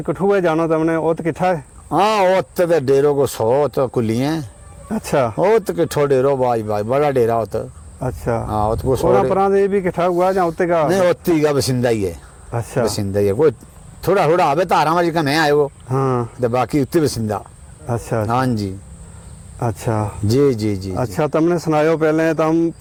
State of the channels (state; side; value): identical; both; correlation 1.00